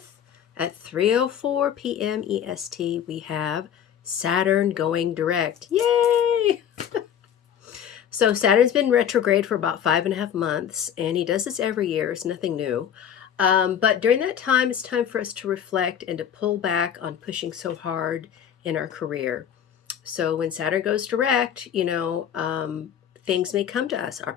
at 3:04 p.m. EST? We have Saturn going direct. Yay! So Saturn's been retrograde for about 5.5 months, and he does this every year. It's nothing new. But during that time, it's time for us to reflect and to pull back on pushing so hard in our career. So when Saturn goes direct, things may come to us,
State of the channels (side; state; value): right; quieter; 9.0 dB